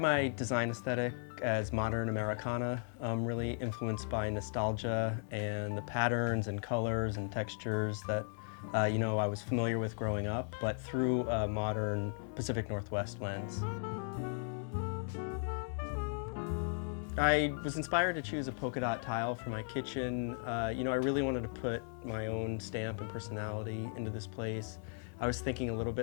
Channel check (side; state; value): right; silent; 54 dB below the other